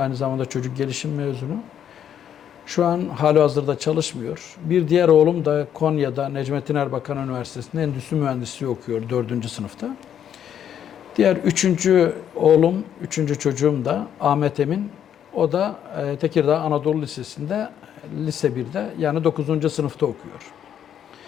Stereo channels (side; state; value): right; quieter; 9.4 dB